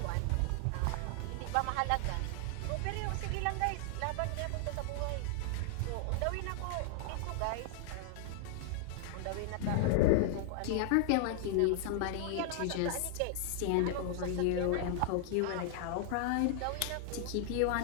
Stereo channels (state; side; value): different; both; correlation -0.01